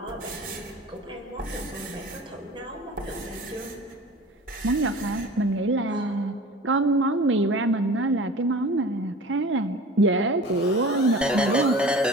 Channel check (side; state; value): both; normal; correlation 0.40